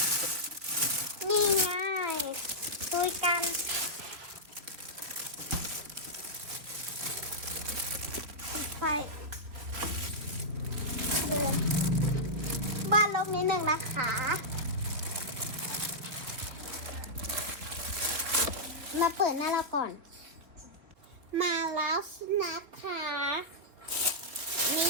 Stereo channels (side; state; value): left; late; 3.6 ms